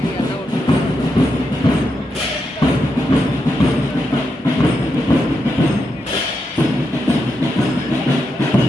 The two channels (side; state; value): both; normal; correlation 0.84